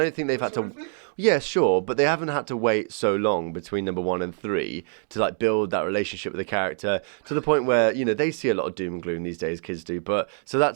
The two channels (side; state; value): left; silent; digital silence